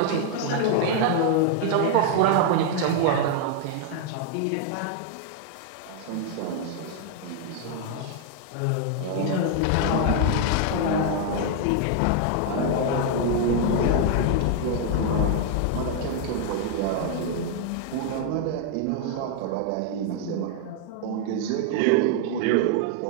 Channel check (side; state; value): both; different; correlation 0.00